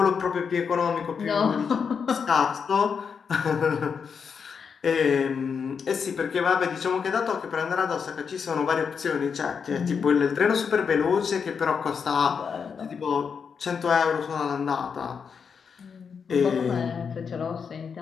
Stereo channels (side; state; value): right; quieter; 6.3 dB